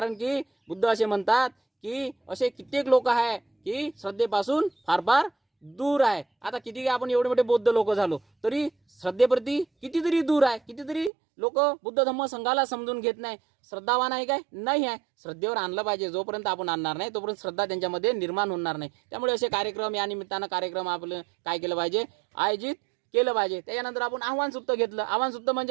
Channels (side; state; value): left; drops out; at 11.1 s